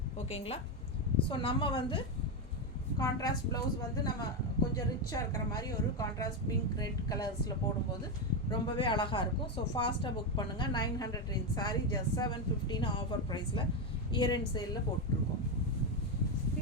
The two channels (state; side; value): normal; both; correlation 0.08